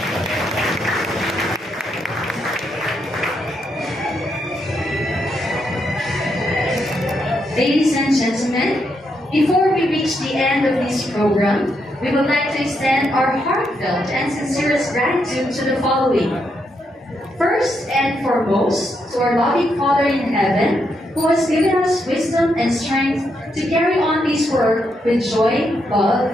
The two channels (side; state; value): both; normal; correlation 0.80